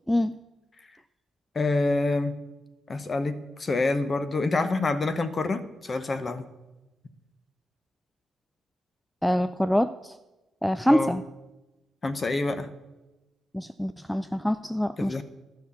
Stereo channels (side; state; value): both; normal; correlation 0.94